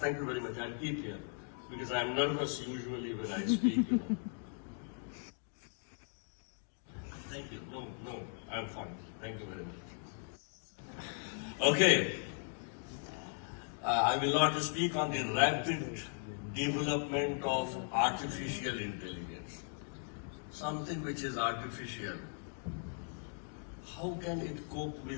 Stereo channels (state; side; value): silent; right; 52 dB below the other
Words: you very much. I'll keep here because I'm nervous usually when I speak. Thank you. No, I'm fine. Thank you very much. Okay. I will not speak on the rapid development of artificial intelligence. Something which is artificial. How can it cope